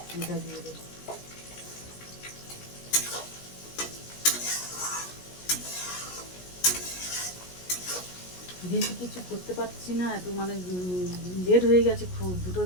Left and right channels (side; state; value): right; late; 17 ms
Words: এটা দিয়ে দেবো। বেশি কিছু করতে পারছি না, এত মানে লেট হয়ে গেছে, খুব 2টো